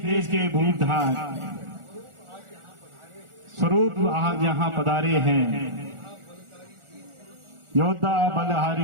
देश के भूतधार, स्वरूप आज यहाँ पधारे हैं। योद्धा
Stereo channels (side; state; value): left; late; 1.4 ms